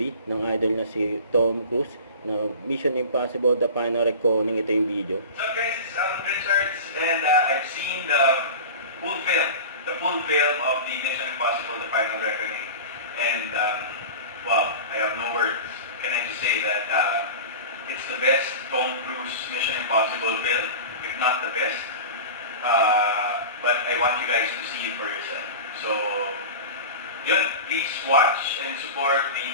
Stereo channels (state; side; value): inverted; both; correlation -0.32